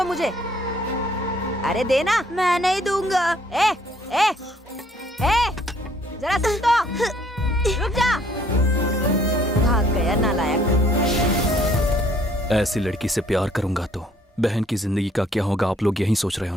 मुझे। अरे देना। मैं नहीं दूंगा। ए, ए, ए, जरा सुन तो। रुक जा। भाग गया नालायक। ऐसी लड़की से प्यार करूंगा तो बहन की जिंदगी का क्या होगा, आप लोग यही सोच रहे हो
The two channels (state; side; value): normal; both; correlation 0.62